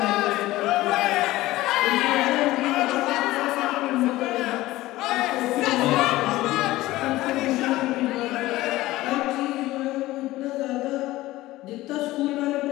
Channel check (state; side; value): quieter; right; 17.3 dB